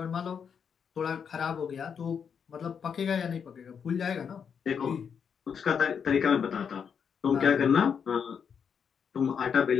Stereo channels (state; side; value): quieter; right; 7.0 dB